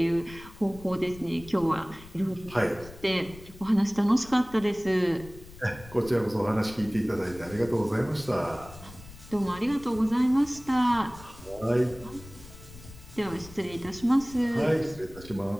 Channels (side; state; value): left; noise; rumble, 18 dB below the sound